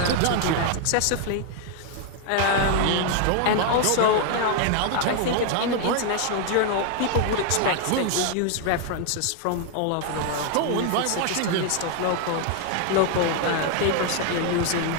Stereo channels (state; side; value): different; both; correlation 0.00